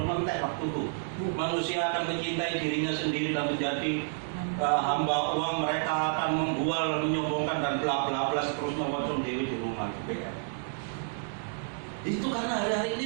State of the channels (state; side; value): silent; left; digital silence